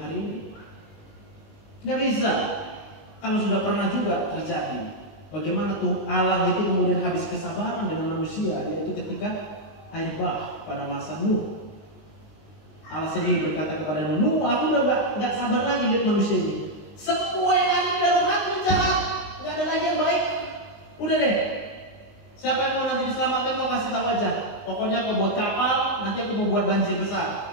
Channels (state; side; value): late; right; 19 ms